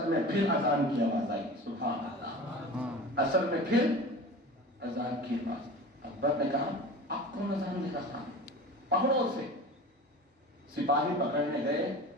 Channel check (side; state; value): both; normal; correlation 0.35